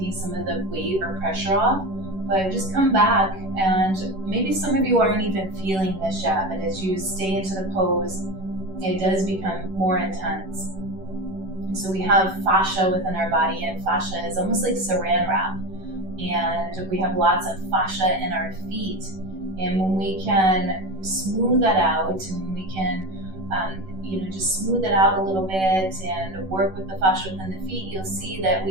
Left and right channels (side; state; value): left; late; 11 ms